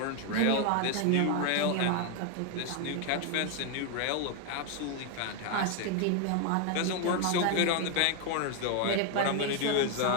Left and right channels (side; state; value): both; different; correlation 0.01